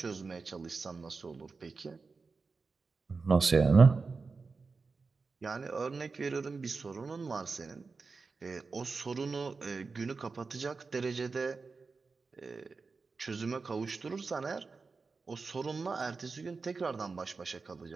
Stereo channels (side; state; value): left; quieter; 4.4 dB